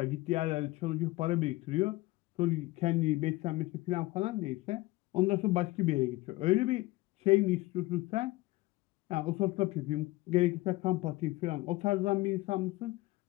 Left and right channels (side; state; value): right; quieter; 20.1 dB